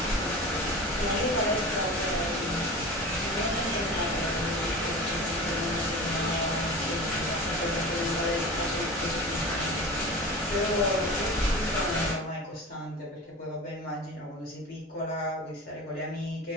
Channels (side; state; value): both; normal; correlation 0.33